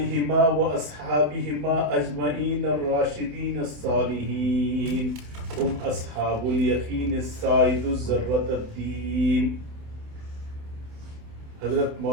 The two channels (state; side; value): late; left; 27 ms